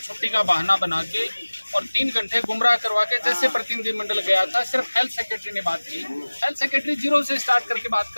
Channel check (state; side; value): inverted; both; correlation -1.00